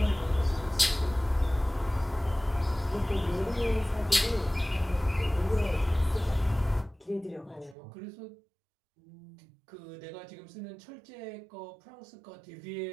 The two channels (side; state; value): left; drops out; at 7.8 s